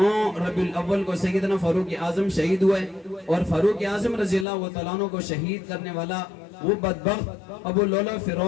ربیع الاول کو سیدنا فاروق اعظم شہید ہوئے، اور فاروق اعظم رضی اللہ تعالیٰ عنہ کو شہید کرنے والا وہ بدبخت ابو لولا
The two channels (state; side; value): drops out; right; at 4.5 s